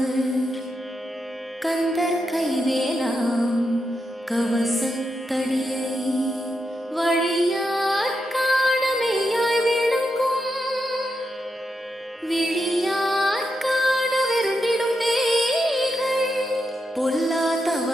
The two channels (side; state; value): both; normal; correlation 0.85